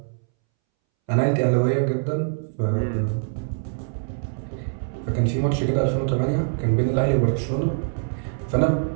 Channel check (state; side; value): silent; left; 63 dB below the other